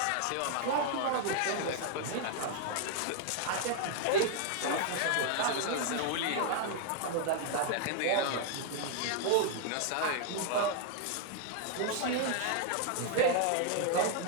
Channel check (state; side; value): different; both; correlation 0.00